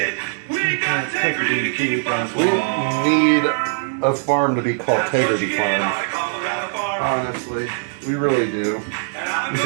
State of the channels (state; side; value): silent; left; digital silence